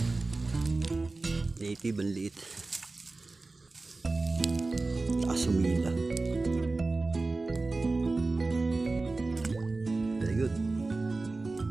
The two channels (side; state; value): left; quieter; 3.4 dB